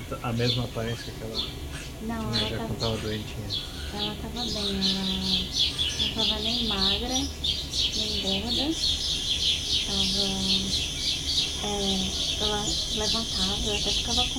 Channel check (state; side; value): identical; both; correlation 1.00